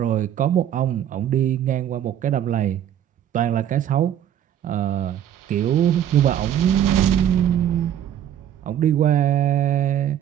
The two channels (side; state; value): left; quieter; 10.4 dB